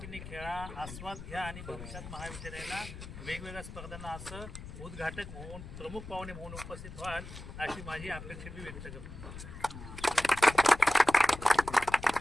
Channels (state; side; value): noise; left; rumble, 12 dB below the sound